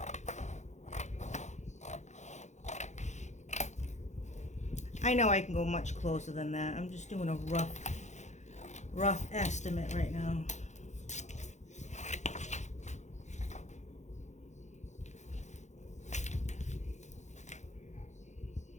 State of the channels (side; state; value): right; late; 0.34 ms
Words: I know I can go much closer than that. I'm just doing a rough estimate right now.